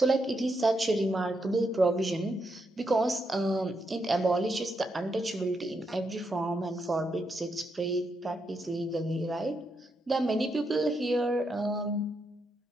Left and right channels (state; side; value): normal; both; correlation 0.82